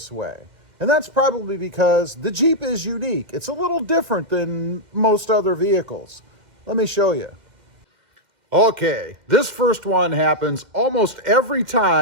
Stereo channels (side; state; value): left; late; 2.1 ms